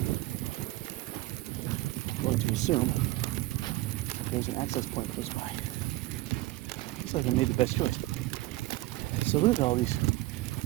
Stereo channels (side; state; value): left; quieter; 18.4 dB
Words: I'm going to assume that there's an access point close by. Looks like I made the best choice. So look at all these